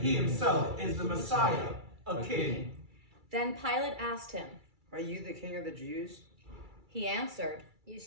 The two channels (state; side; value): late; left; 2.3 ms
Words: himself is the Messiah, a king." Then Pilate asked him, "Are you the king of the Jews?" He answered, "You